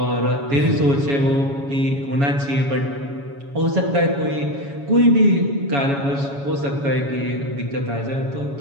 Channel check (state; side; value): late; left; 7.2 ms